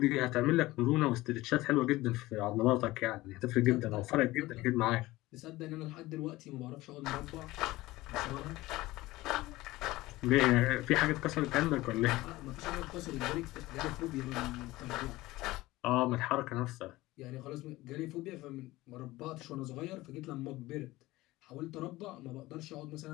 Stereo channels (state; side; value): quieter; right; 18.6 dB